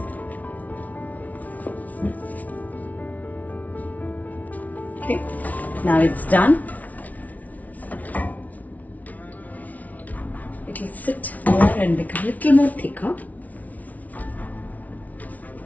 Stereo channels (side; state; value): right; late; 0.073 ms